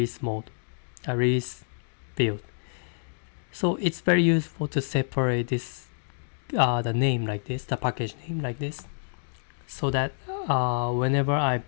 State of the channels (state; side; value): silent; right; digital silence